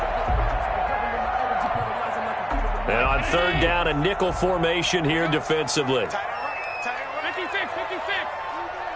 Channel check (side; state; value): both; identical; correlation 1.00